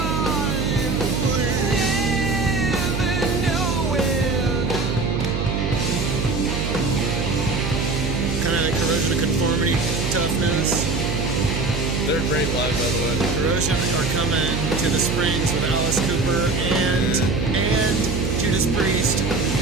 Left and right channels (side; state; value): right; noise; hum, 2 dB below the sound